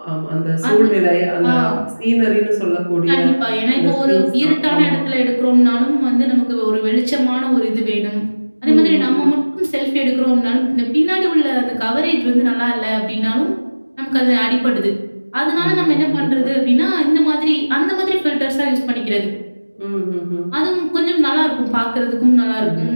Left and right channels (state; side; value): inverted; both; correlation -1.00